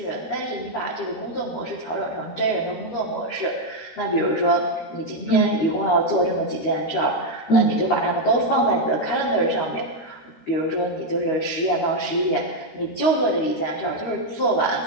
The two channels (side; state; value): right; late; 13 ms